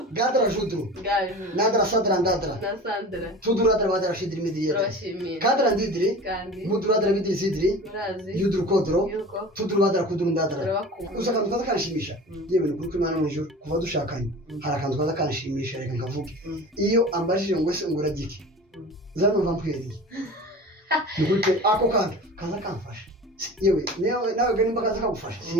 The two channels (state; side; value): normal; both; correlation 0.37